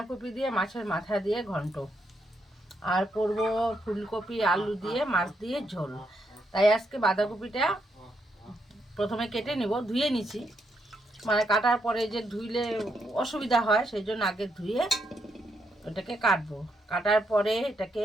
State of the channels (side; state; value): both; normal; correlation 0.79